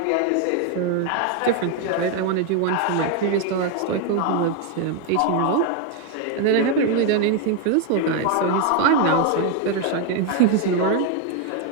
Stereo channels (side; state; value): both; different; correlation 0.01